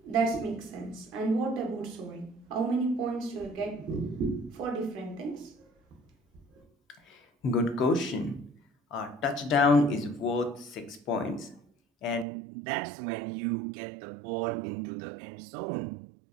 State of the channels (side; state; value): left; drops out; at 12.2 s